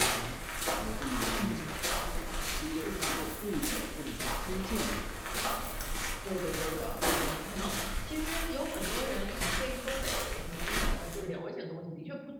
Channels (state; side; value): identical; both; correlation 1.00